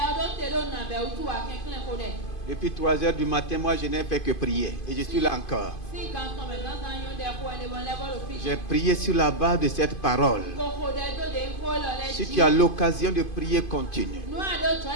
Depuis 3 heures du matin, moi je n'ai fait que prier. Et je suis là encore. J'ai prié sur la base de cette parole. Si tu as l'occasion de prier, continue.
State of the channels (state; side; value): late; right; 2.5 ms